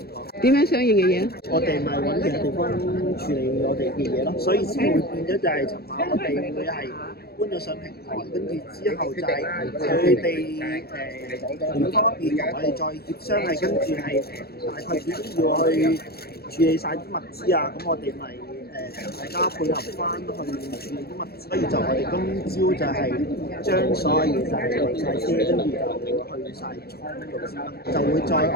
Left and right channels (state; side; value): late; right; 0.46 ms